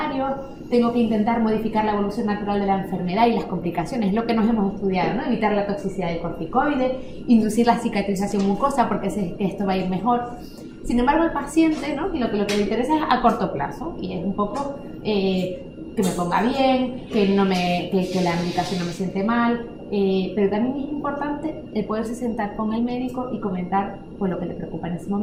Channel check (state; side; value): identical; both; correlation 1.00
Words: tengo que intentar modificar la evolución natural de la enfermedad y las complicaciones, lo que nos hemos estudiado, ¿no? Evitar la toxicidad del corticoide, inducir la cicatrización mucosa porque sé que esto va a ir mejor. Sin embargo, el paciente, ¿no? Lo que le interesa es a corto plazo, y es un poco que que me ponga bien, que la medicación no me siente mal, pero también es importante el poderse sentar con el médico y comentar pues, lo que le preocupa en ese